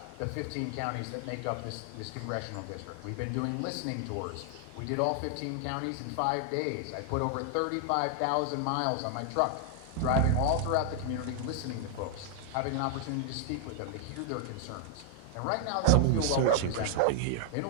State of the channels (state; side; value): different; both; correlation 0.00